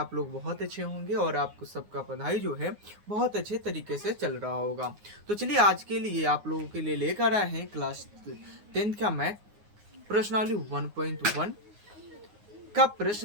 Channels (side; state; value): left; late; 9.6 ms